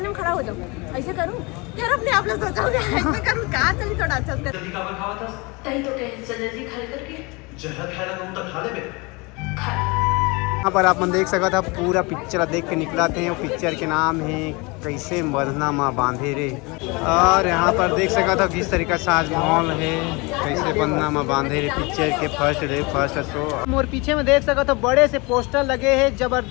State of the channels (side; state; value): right; quieter; 26.8 dB